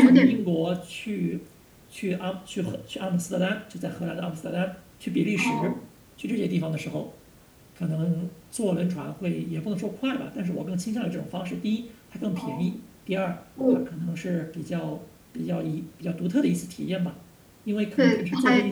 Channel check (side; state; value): both; identical; correlation 1.00